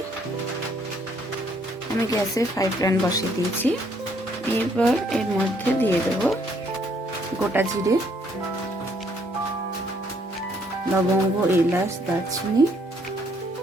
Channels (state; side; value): normal; both; correlation 0.67